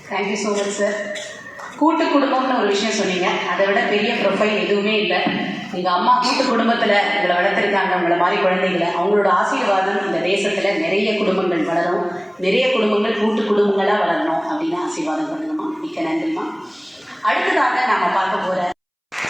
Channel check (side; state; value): both; identical; correlation 1.00